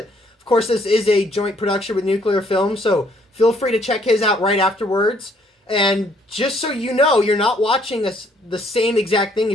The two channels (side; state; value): both; normal; correlation 0.66